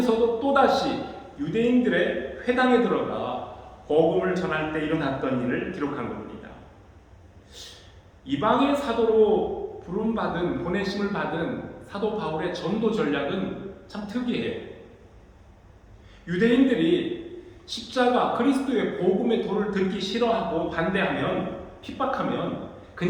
또다시 유대인들의 회당에 들어가 복음을 전할 때 일어났던 일을 기록한 겁니다. 이방의 사도로 부름받은, 보내심을 받은 사도 바울의 전도 전략은 참 특이해요. 유대인들이 십자가 그리스도의 복음의 도를 듣기 싫어하고 반대하면, 핍박하면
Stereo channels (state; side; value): identical; both; correlation 1.00